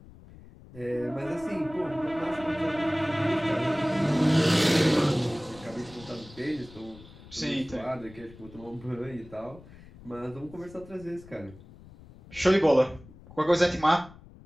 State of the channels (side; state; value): left; noise; rumble, 20 dB below the sound